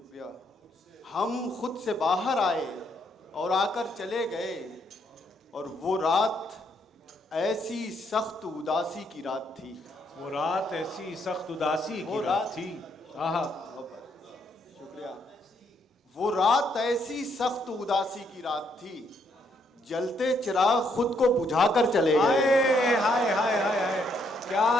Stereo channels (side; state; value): both; normal; correlation 0.73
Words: हम खुद से बाहर आए और आकर चले गए। और वो रात ऐसी सख्त उदासी की रात थी। वो रात ऐसी सख्त उदासी की रात थी। आहा। शुक्रिया। वो रात ऐसी सख्त उदासी की रात थी। जलते चिराग खुद को बुझाकर चले गए। हाय हाय हाय हाय हाय।